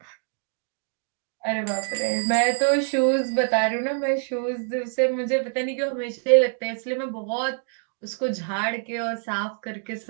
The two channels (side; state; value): left; silent; 61 dB below the other